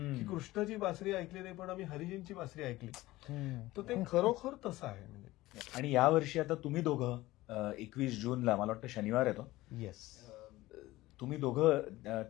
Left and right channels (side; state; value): right; quieter; 17.9 dB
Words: की कृष्णाची बासरी ऐकली नाही पण आम्ही हरिजींची बासरी ऐकली, तर ते खरोखर तसं आहे. म्हणजे आणि या वर्षी आता तुम्ही दोघं 21 जूनला मला वाटतं शनिवार येतो, येस, तुम्ही दोघं